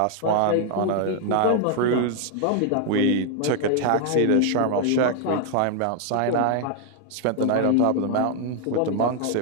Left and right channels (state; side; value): different; both; correlation 0.00